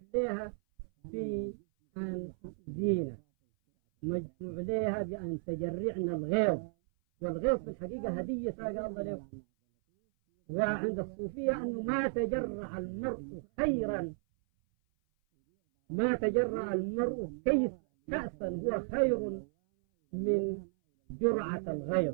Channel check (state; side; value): silent; left; 55 dB below the other